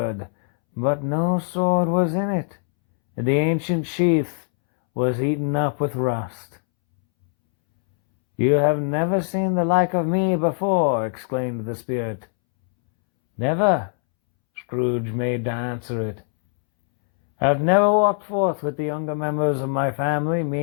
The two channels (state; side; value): silent; right; 64 dB below the other